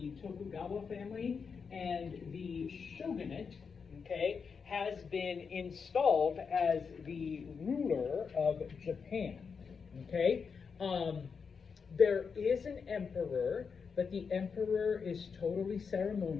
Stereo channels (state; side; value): quieter; right; 5.8 dB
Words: Tokugawa family, and the shogunate, okay, has been installed as the ruler of Japan. Okay, there is an emperor, but the emperor is totally